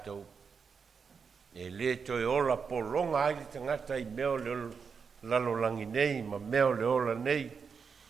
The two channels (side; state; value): left; quieter; 5.8 dB